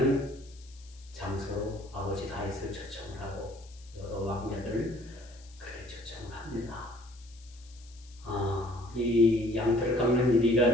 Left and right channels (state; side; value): noise; left; hiss, 24 dB below the sound